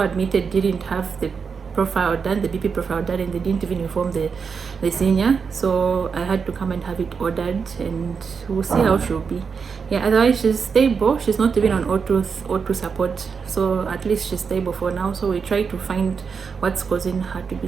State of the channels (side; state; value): left; quieter; 5.8 dB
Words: admitted didn't have the profile done, the BP profile done, and they didn't even inform the senior, so I had to come and have it ordered, and we'll see how she'll be. Yeah, otherwise she's stable. She's not even on O2 support, so at least she's stable for now. So we try to find what's causing her to be